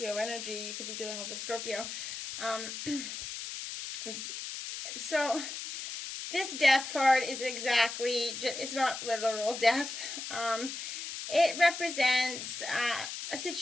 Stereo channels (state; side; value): noise; left; hiss, 7 dB below the sound